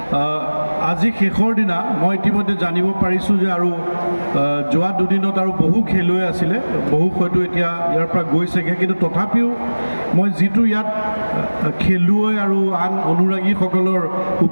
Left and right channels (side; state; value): both; inverted; correlation -1.00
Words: আজি শেষৰ দিনা মই ইতিমধ্যে জানিব পাৰিছোঁ যে আৰু যোৱা দুদিনত আৰু বহু খেলুৱৈ আছিলে, বহু হয়তো এতিয়া ইয়াৰ পৰা গৈছেগৈ, কিন্তু তথাপিও মই যিটো ইয়াত খেলুৱৈ আৰু আন অনুৰাগীসকলৰ